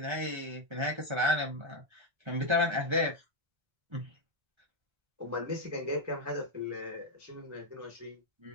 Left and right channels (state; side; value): late; left; 1.3 ms